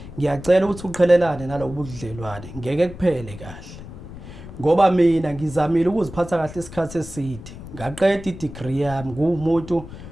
ngiyacela ukuthi uqhelelane nalobu budlelwane ngeke kuphele kahle ngoba mina ngizamile ukuziphatha kahle isikhathi eside ngaqeda i-degree yami ngumuntu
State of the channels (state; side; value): noise; left; rumble, 14 dB below the sound